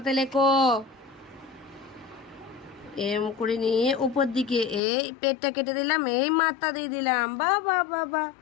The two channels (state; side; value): drops out; right; at 4.8 s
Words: লেখো। এম করে নিয়ে উপর দিকে এই পেটটা কেটে দিলাম, এই মাথা দিয়ে দিলাম, বাহ বাহ বাহ বাহ।